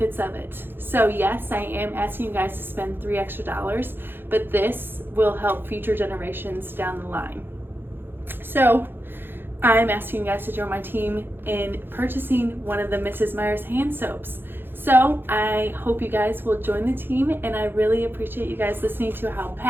of it. So yes, I am asking you guys to spend $3 extra, but this will help future generations down the line. So I'm asking you guys to join my team in purchasing one of the Mrs. Meyers hand soaps. So I hope you guys will join the team, and I really appreciate you guys listening to how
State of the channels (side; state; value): left; late; 0.10 ms